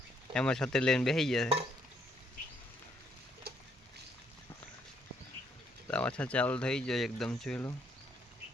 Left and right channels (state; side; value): normal; both; correlation 0.71